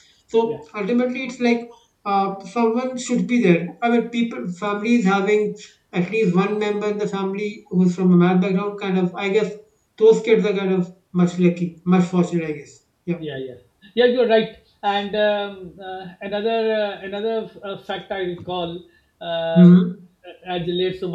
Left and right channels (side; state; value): both; identical; correlation 1.00